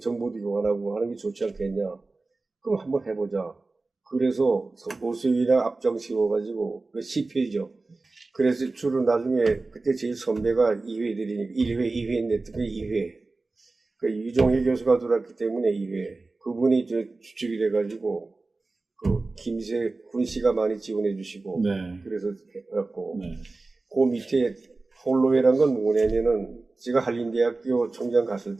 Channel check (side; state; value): left; quieter; 3.5 dB